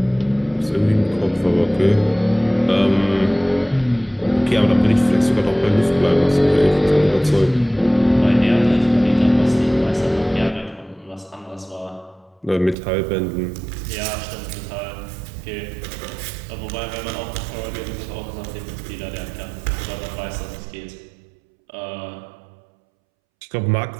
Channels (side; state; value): left; drops out; at 12.8 s